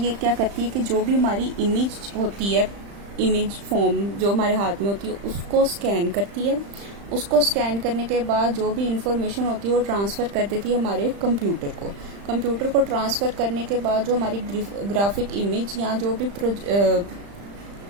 क्या करती है कि जो भी हमारी इमेज होती है, इमेज फॉर्म जो हमारे हाथ में होती है, उसको स्कैन करती है। उसको स्कैन करने के बाद जो भी इंफॉर्मेशन होती है वो ट्रांसफ़र कर देती है हमारे कंप्यूटर को। कंप्यूटर को ट्रांसफ़र करने के बाद जो हमारी ग्राफिक इमेज या जो भी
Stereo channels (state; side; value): late; left; 35 ms